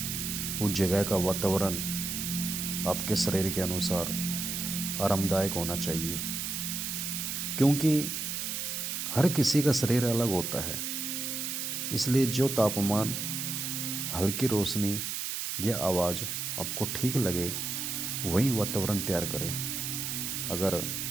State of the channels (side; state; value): right; noise; hiss, 3 dB below the sound